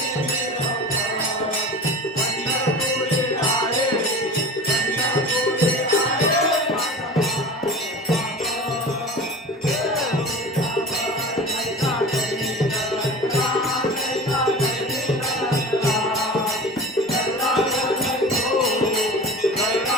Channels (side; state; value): both; normal; correlation 0.35